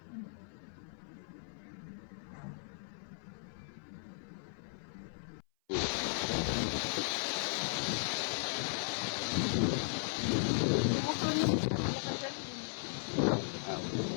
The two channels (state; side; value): silent; right; 53 dB below the other